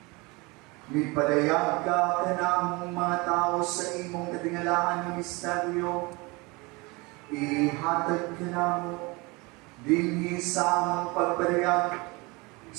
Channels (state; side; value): quieter; left; 25.8 dB